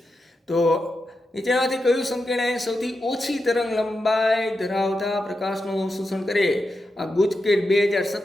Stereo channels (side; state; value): both; normal; correlation 0.88